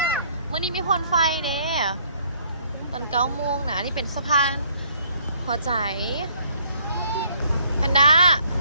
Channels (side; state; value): both; inverted; correlation -0.63